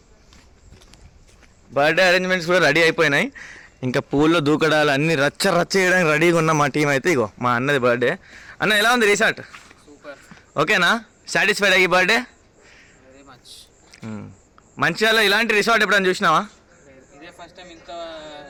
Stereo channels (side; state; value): both; identical; correlation 1.00